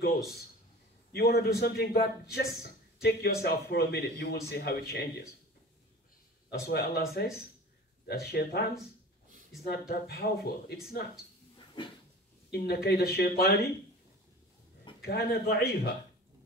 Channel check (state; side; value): normal; both; correlation 0.39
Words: You want to do something bad, just take yourself for a minute, you will see how it changes. That's why Allah says that shaitan is not that powerful. It's not. Inna kayda shaitani kana da'ifa.